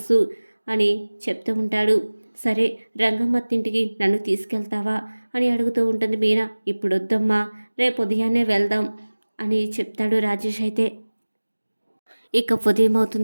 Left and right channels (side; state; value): both; inverted; correlation -1.00